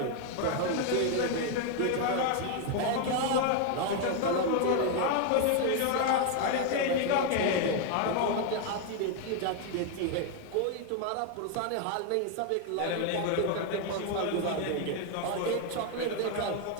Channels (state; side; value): different; both; correlation 0.01